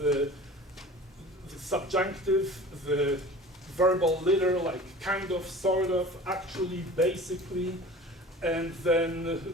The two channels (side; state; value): both; normal; correlation 0.41